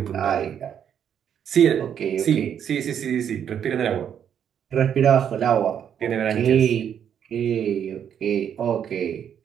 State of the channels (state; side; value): quieter; left; 8.8 dB